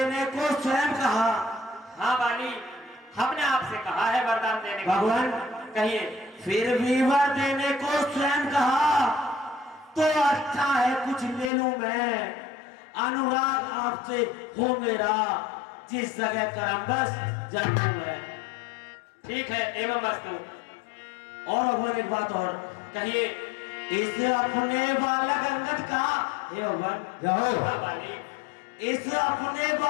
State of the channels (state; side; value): drops out; right; at 11.5 s